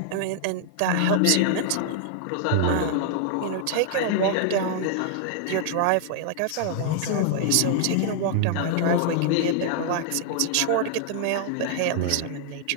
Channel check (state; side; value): different; both; correlation -0.01